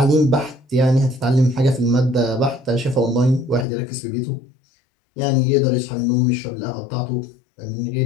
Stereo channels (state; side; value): drops out; right; at 3.7 s